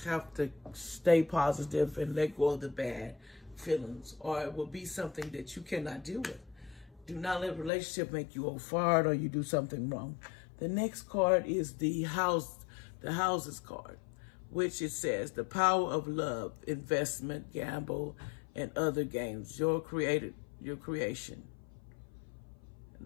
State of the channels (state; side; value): drops out; right; at 7.7 s